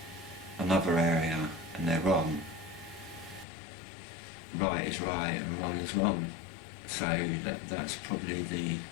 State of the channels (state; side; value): drops out; right; at 3.5 s